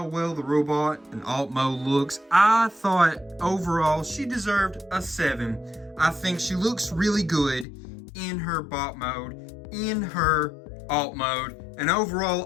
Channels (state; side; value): drops out; right; at 7.7 s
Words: well the robot and alt mode looks. I thought overall she deserved a 7. I think she looks really good in her bot mode, in her alt mode, and